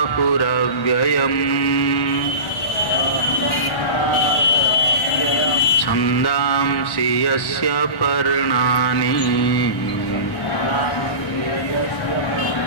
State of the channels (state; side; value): late; right; 1.5 ms